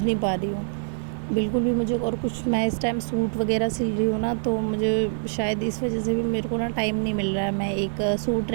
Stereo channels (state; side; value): silent; left; digital silence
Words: नहीं पा रही हूँ बिल्कुल भी मुझे। और कुछ मैं इस टाइम सूट वगैरह सिल रही हूँ ना, तो मुझे शायद इस वजह से भी मेरे को ना टाइम नहीं मिल रहा है। मैं एक सूट